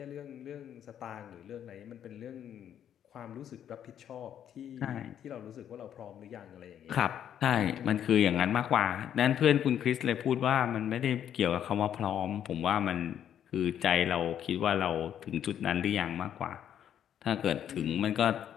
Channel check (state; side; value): quieter; right; 9.8 dB